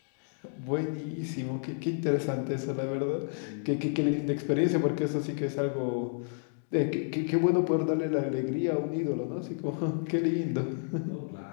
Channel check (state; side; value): silent; right; digital silence